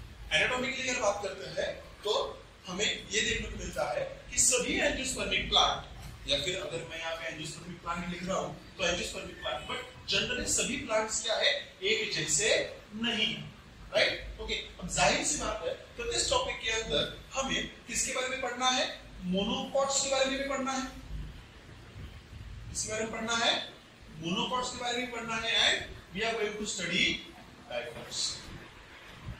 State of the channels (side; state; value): both; identical; correlation 1.00